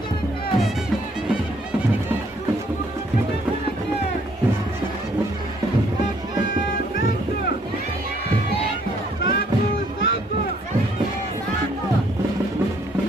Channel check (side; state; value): both; normal; correlation 0.65